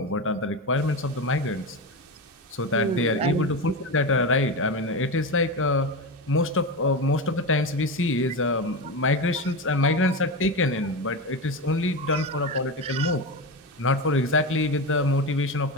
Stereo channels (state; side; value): normal; both; correlation 0.19